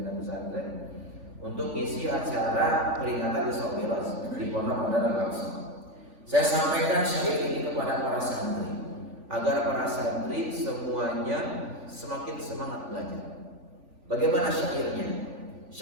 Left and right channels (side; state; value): left; late; 3.5 ms